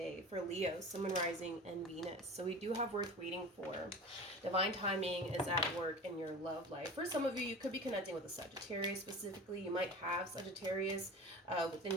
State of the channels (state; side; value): normal; both; correlation 0.35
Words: For Leo, Sun, Rising, and Venus. So we do have worth waiting for. Divine timing is at work in your love life. For some of you, you could be connecting with a Sagittarius specifically. You might have Sagittarius within